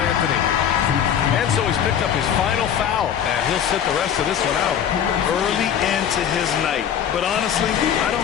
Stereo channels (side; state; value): right; quieter; 9.0 dB